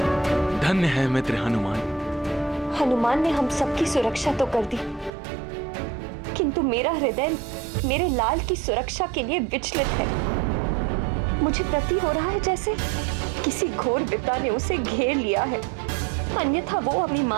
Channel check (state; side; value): drops out; left; at 5.1 s